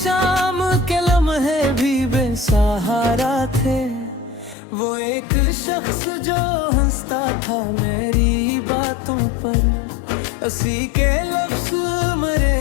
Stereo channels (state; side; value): drops out; right; at 4.5 s